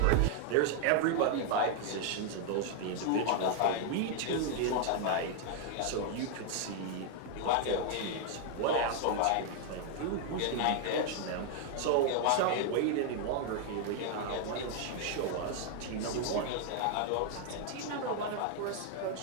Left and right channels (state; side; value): different; both; correlation 0.00